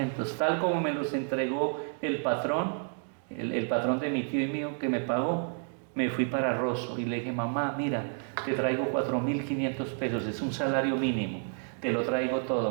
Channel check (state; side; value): silent; left; 57 dB below the other